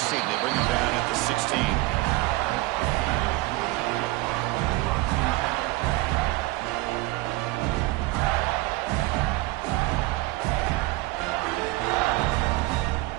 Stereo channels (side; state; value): left; quieter; 20.5 dB